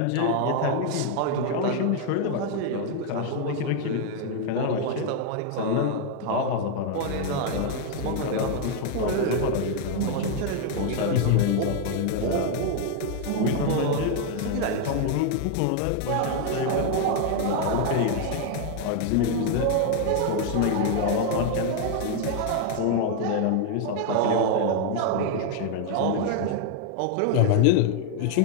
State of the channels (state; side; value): different; both; correlation 0.00